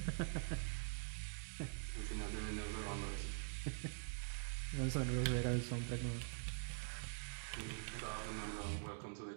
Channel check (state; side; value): silent; left; digital silence